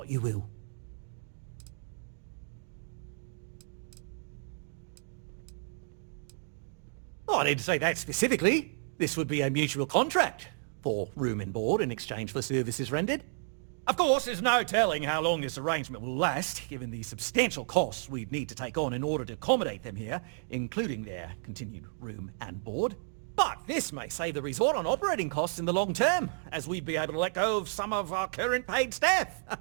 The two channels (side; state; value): left; silent; digital silence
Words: you will. Oh, I didn't say that specifically. This would be a mutual contract for room and board in exchange for services rendered. Of course, there's no telling how long this arrangement will last, given the substantial costs we'd need to take on in order to accommodate them here, including their continued room and board. But this may save the resort on operating costs in the long term, as we'd be able to let go of some of our current paid staff.